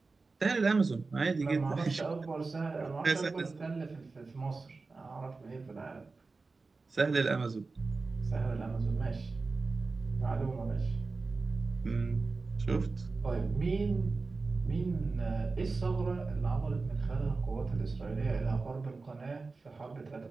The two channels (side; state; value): left; quieter; 4.0 dB